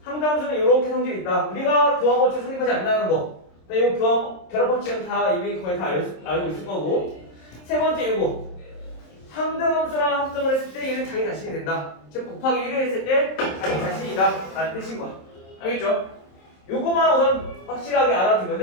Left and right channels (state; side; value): late; right; 26 ms